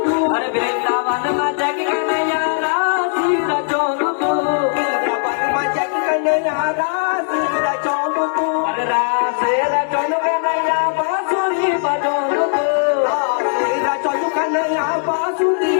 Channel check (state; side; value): silent; right; digital silence